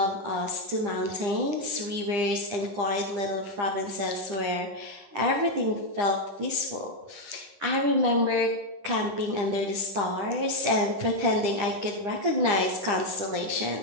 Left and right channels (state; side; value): late; left; 10 ms